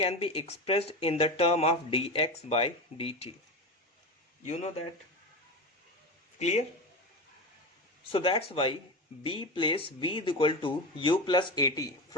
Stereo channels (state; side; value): normal; both; correlation 0.23